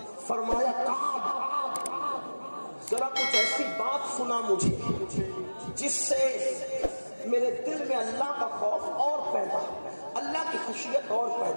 فرمایا کعب ذرا کچھ ایسی بات سنا مجھے جس سے میرے دل میں اللہ کا خوف اور پیدا, اللہ کی خشیت اور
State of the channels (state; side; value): inverted; both; correlation -1.00